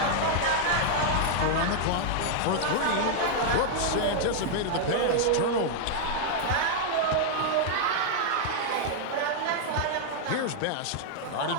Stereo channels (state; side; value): different; both; correlation -0.01